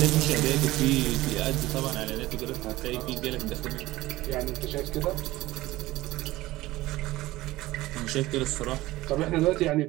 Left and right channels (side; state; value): left; quieter; 17.7 dB